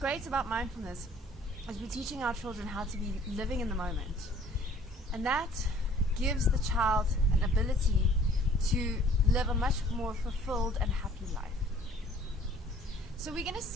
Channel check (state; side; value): normal; both; correlation 0.54